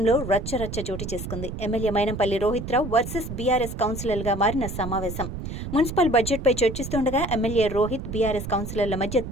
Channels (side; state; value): right; noise; rumble, 7 dB below the sound